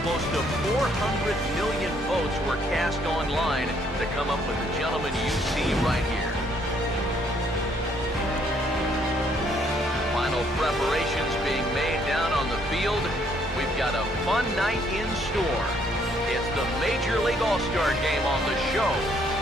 close to 400 million votes were cast online to come up with the gentleman you see right here. Final preparations being made down on the field. We've got a fun night in store. It's the Major League All-Star Game on the show,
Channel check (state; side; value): normal; both; correlation 0.67